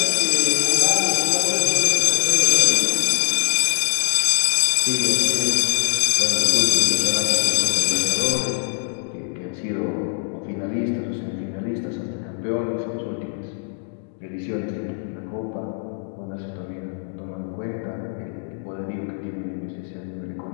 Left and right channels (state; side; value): silent; right; digital silence